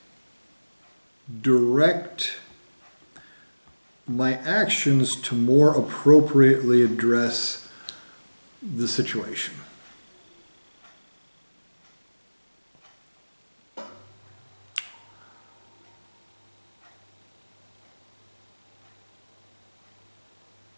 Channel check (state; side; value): inverted; both; correlation -1.00